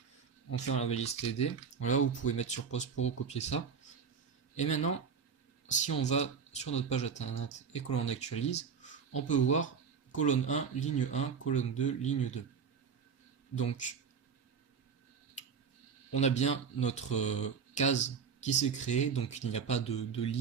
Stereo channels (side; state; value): left; quieter; 6.3 dB